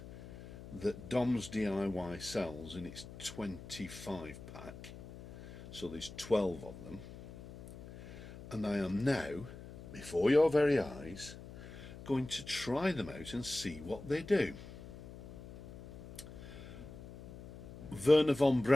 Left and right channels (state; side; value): noise; left; hum, 14 dB below the sound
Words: that Dom's DIY sells in its 25 pack. So there's 12 of them. And I am now, before your very eyes, going to try them out and see what they do. Wernher von